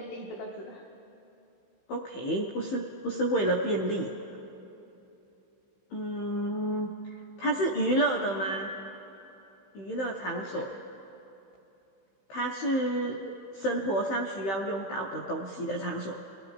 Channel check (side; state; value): right; late; 15 ms